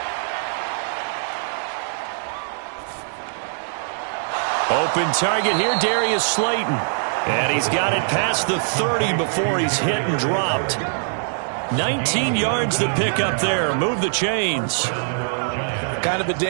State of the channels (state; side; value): silent; left; digital silence